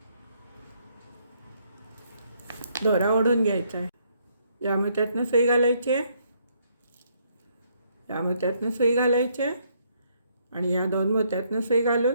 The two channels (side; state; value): both; inverted; correlation -0.71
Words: दोरा ओढून घ्यायचा आहे. या मोत्यातनं सुई घालायची, या मोत्यातनं सुई घालायची आणि या 2 मोत्यातनं सुई घालून